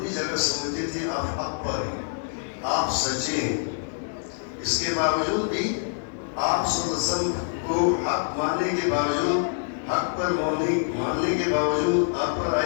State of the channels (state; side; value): silent; right; 61 dB below the other